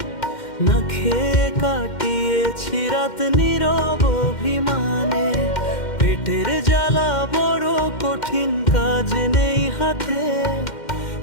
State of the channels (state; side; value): late; right; 2.1 ms